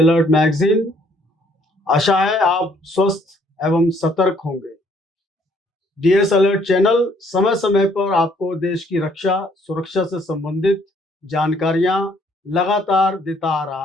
magazine. आशा है आप स्वस्थ एवं सतर्क होंगे। डीएस अलर्ट चैनल समय समय पर आपको देश की रक्षा सुरक्षा से संबंधित जानकारियां लगातार देता आ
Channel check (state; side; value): normal; both; correlation 0.64